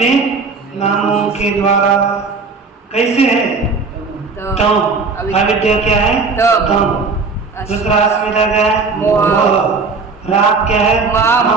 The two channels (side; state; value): left; quieter; 4.4 dB